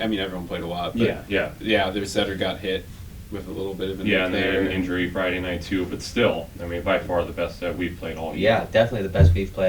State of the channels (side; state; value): both; identical; correlation 1.00